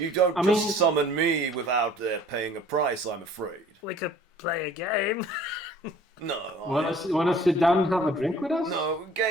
don't I just mean- summon me without paying a price, I'm afraid. We could play a game. No, Want to sit down and have a drink with us? no,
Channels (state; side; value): normal; both; correlation 0.51